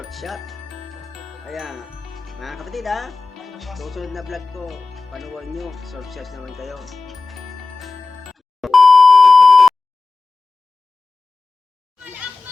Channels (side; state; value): right; quieter; 3.7 dB